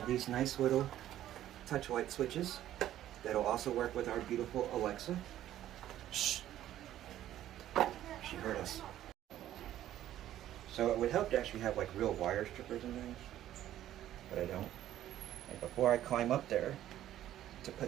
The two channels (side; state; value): left; quieter; 12.6 dB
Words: these nice little touch light switches that'll also work with our beautiful Alexa. Shh! She heard us. So it would help to actually have like real wire strippers and things, but I don't. And before I climb up there to